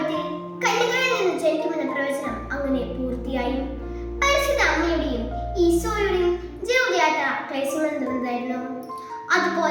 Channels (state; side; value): identical; both; correlation 1.00